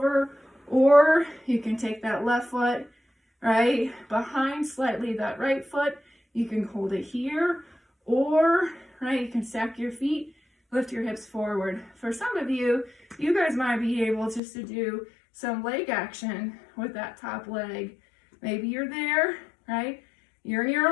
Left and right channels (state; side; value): drops out; right; at 14.4 s